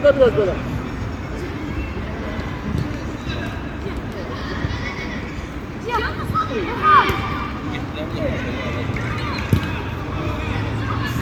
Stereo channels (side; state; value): both; identical; correlation 1.00